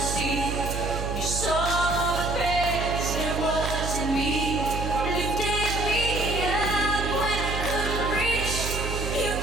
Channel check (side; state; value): right; noise; hum, 4 dB below the sound